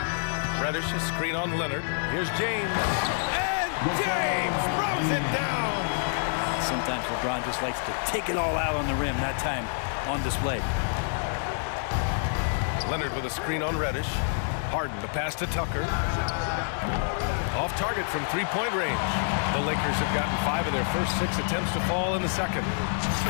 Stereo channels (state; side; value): silent; right; 60 dB below the other